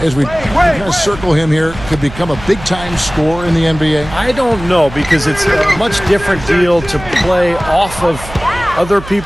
as we kind of circle him here, could become a big-time scorer in the NBA? I don't know, because it's a much different deal to play off of other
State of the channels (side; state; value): right; noise; hum, 14 dB below the sound